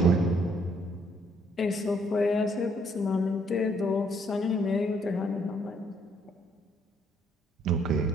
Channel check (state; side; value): normal; both; correlation 0.67